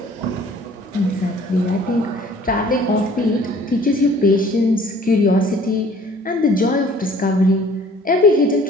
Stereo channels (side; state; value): both; normal; correlation 0.53